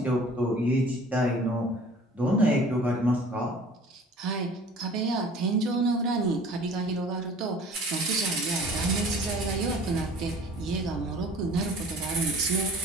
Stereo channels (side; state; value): both; normal; correlation 0.48